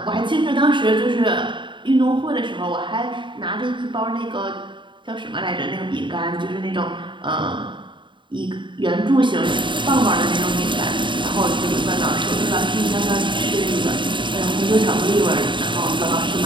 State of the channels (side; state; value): left; late; 0.23 ms